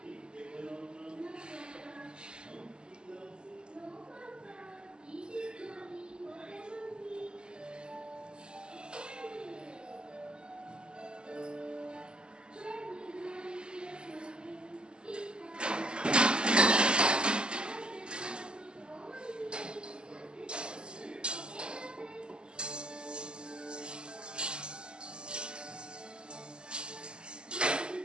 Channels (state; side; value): late; left; 0.048 ms